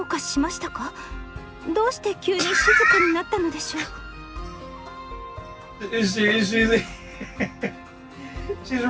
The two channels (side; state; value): both; identical; correlation 1.00